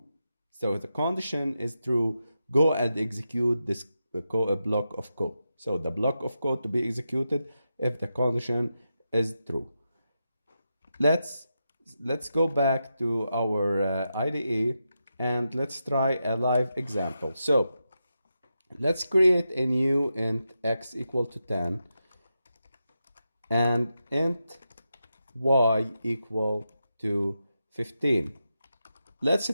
so the condition is true, go and execute this block of code. So the block of code to be executed if the condition is true. Let's go back to our IDE and let's try a live example. So let's create a new int x equal to 10 and int y equal to 15. Let's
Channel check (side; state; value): both; inverted; correlation -0.87